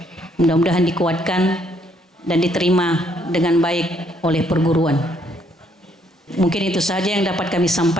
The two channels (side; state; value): both; normal; correlation 0.69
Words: Mudah-mudahan dikuatkan dan diterima dengan baik oleh perguruan. Mungkin itu saja yang dapat kami